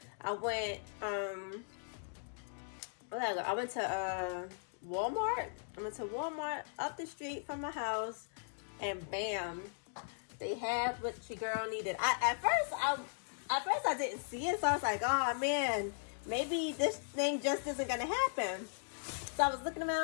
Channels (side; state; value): right; silent; digital silence